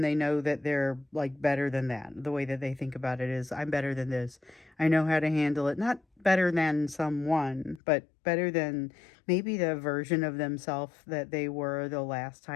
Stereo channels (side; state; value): right; drops out; at 7.8 s